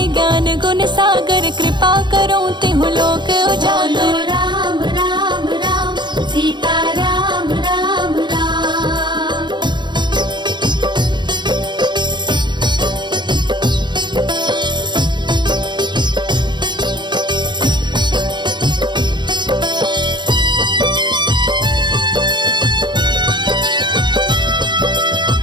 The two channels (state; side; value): late; left; 0.22 ms